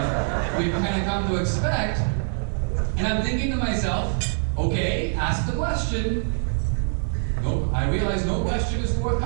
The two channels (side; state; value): left; silent; digital silence